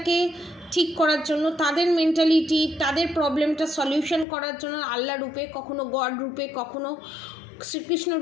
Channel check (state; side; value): drops out; right; at 4.2 s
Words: ঠিক করার জন্য, তাদের মেন্টালিটি, তাদের প্রবলেমটা সলিউশন করার জন্য আল্লাহ রূপে, কখনো গড রূপে, কখনো শ্রীকৃষ্ণ